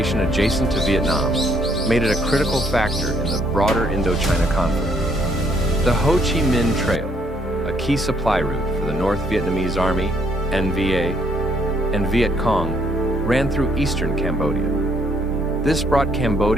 adjacent to Vietnam made it a critical factor in the broader Indochina conflict. The Ho Chi Minh Trail, a key supply route for the North Vietnamese Army, NVA, and Viet Cong, ran through eastern Cambodia. This brought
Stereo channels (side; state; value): both; normal; correlation 0.68